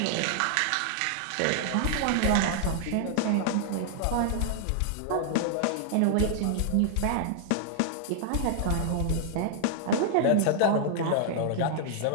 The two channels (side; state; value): both; different; correlation -0.01